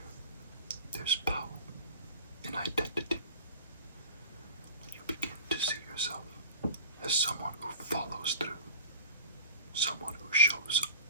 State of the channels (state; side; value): inverted; both; correlation -0.38